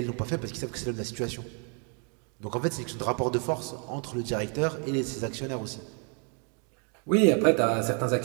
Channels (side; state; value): left; quieter; 38.7 dB